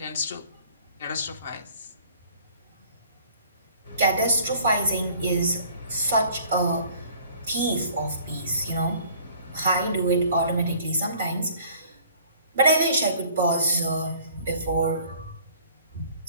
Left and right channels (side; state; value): both; inverted; correlation -0.53